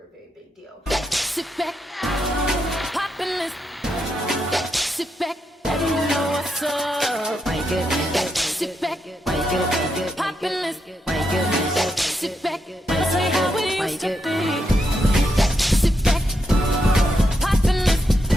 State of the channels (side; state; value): both; normal; correlation 0.82